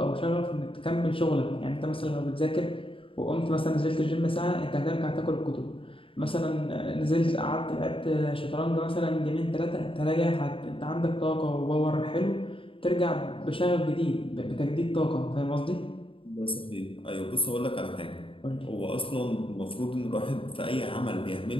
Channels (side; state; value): right; late; 0.26 ms